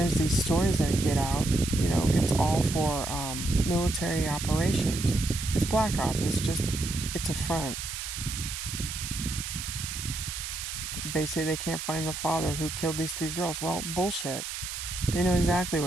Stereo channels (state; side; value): noise; right; hiss, 6 dB below the sound